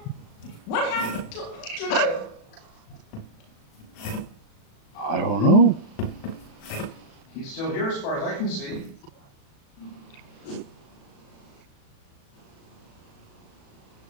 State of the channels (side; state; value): right; late; 36 ms